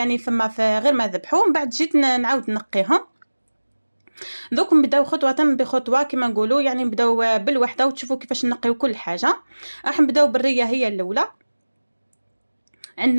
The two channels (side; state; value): both; inverted; correlation -1.00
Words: فما في غير ما ذبحوه، من بعد جيت نعاود نقيهم. دوك نبداو خطوه بخطوه كما نقولوا، يعني نبداو بالوحده وتشوفوا كيفاش نقيو كل حاجه. راح نبداو بالريه هي الاولى.